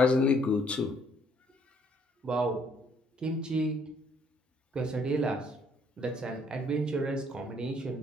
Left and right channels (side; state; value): both; normal; correlation 0.65